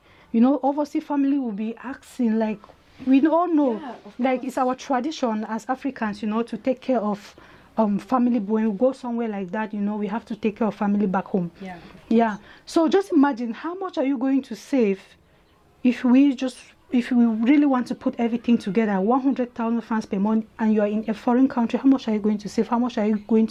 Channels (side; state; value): both; identical; correlation 1.00